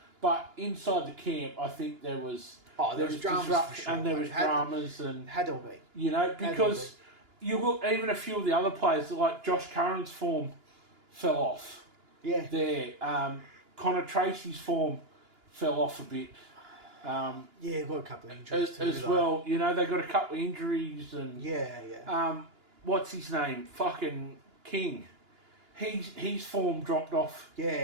But inside the camp, I think there was dramas for sure, and there was dramas and had to be. You know, because you look, even a few of the other players like Josh Curran's form fell off. Yeah. There, Connor Tracy's form fell off a bit. Got a couple of injuries as well. You know, they got a couple of injuries and what's his name? Fucking King. His form dropped off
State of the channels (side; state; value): left; late; 2.9 ms